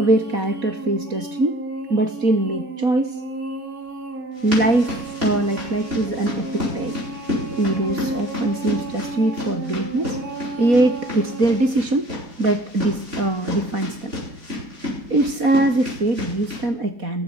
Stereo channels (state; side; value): late; left; 4.1 ms